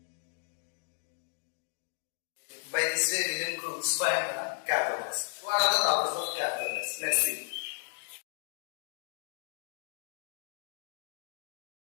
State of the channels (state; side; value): silent; right; digital silence